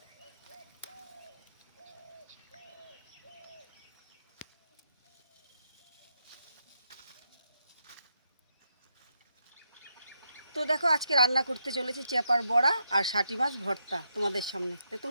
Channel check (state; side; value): inverted; both; correlation -0.82